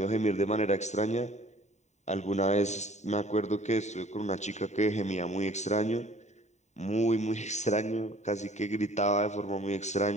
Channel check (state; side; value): late; right; 0.34 ms